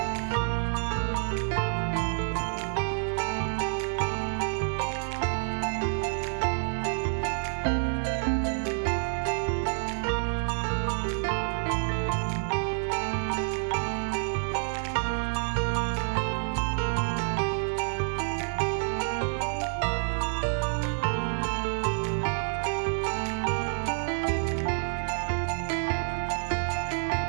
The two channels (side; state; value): left; silent; 59 dB below the other